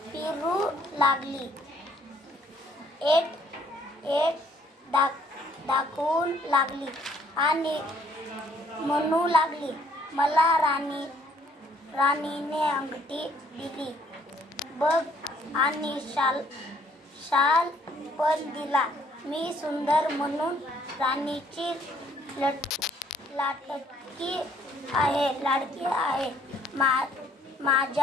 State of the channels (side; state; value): both; normal; correlation 0.63